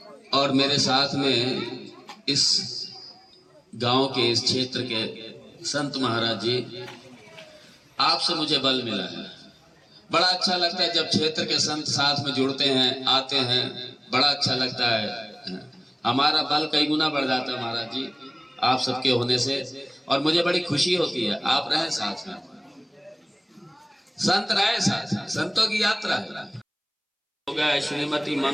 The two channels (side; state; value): both; identical; correlation 1.00